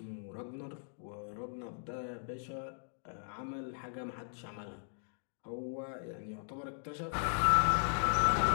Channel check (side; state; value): right; silent; digital silence